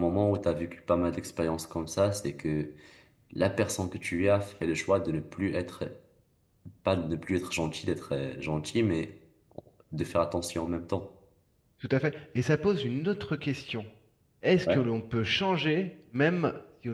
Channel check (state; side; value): identical; both; correlation 1.00